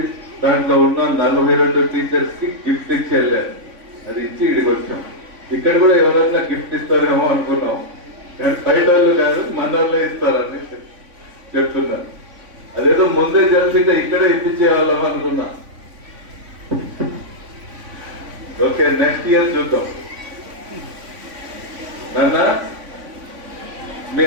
దాంట్లో ఉన్న 42 టీచర్స్ కి గిఫ్ట్ ఇచ్చి వెళ్ళారు. అది ఇచ్చి ఇడికి వచ్చాం. ఇక్కడ కూడా ఎవరైనా గిఫ్ట్ ఇస్తారేమో అనుకున్నాం. బయట వాళ్ళు కాదు, మన వాళ్ళే ఇస్తారని చెప్తున్నారు. అదేదో ముందే తెలిసింటే ఇక్కడే ఇప్పించేవాళ్ళం అనుకున్నా. ఓకే, నెక్స్ట్ ఇయర్ చూద్దాం. నాన్న, మీ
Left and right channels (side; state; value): left; late; 3.5 ms